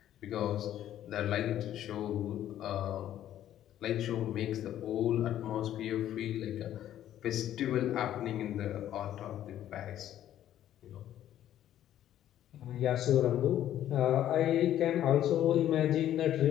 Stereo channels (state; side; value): quieter; right; 11.8 dB